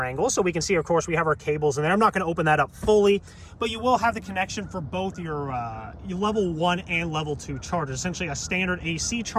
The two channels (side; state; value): both; identical; correlation 1.00